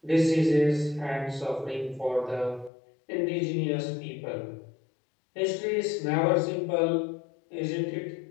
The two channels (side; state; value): right; drops out; at 2.7 s